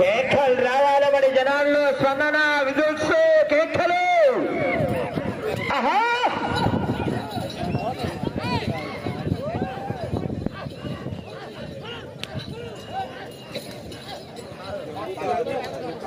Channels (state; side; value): identical; both; correlation 1.00